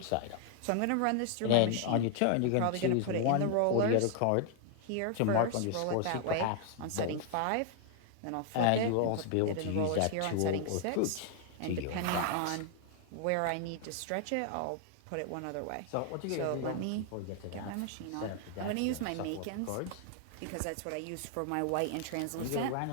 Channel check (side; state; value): both; different; correlation 0.00